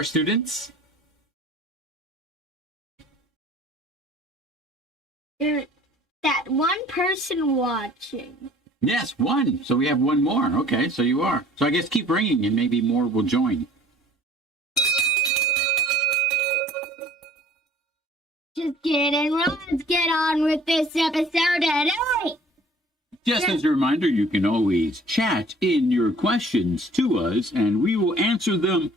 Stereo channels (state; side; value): normal; both; correlation 0.52